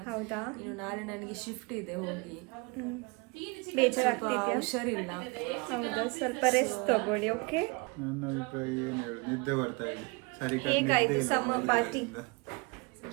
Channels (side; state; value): left; quieter; 27.6 dB